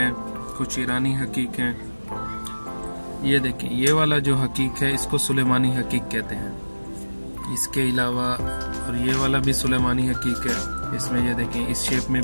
कुछ ईरानी हकीक हैं। ये देखें, ये वाला जो हकीक है इसको सुलेमानी हकीक कहते हैं। इसके अलावा और ये वाला भी सुलेमानी हकीक है। इसमें ये देखें, इस शेप में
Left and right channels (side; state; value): both; inverted; correlation -1.00